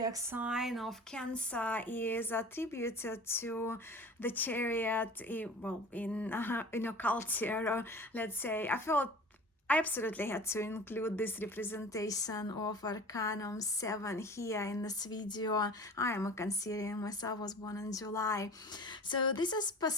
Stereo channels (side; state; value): both; normal; correlation 0.40